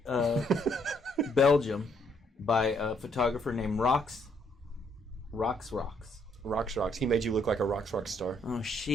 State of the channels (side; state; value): both; normal; correlation 0.70